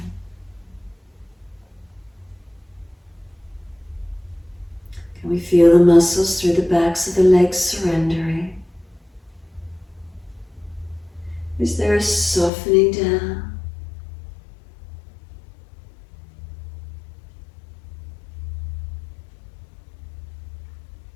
Can we feel the muscles through the backs of the legs surrendering? Is there a softening down?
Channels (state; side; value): drops out; right; at 12.5 s